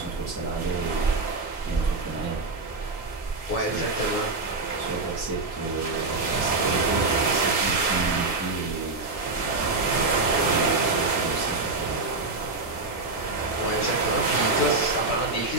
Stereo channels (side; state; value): left; quieter; 3.4 dB